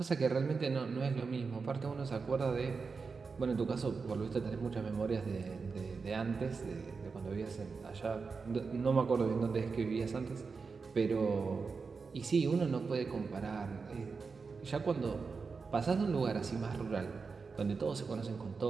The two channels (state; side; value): quieter; left; 4.8 dB